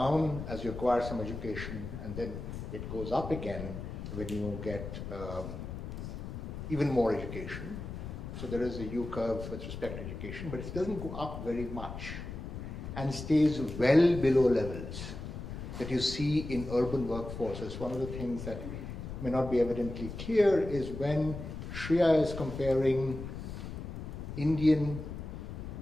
as you acquire some education, and then it goes up again when you get even more education. So there is a U-curve with respect to education, but it doesn't go up very much and stays well below levels that you see in urban workforces. One of the things that may not be evidently clear is when Shreya is comparing Indian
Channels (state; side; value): noise; left; rumble, 8 dB below the sound